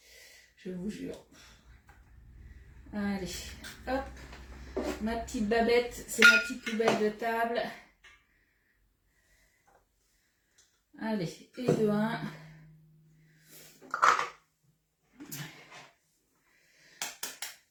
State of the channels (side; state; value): both; identical; correlation 1.00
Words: Je vous jure. Allez, hop. Ma petite babette, c'est ma petite poubelle de table. Allez, et de 1.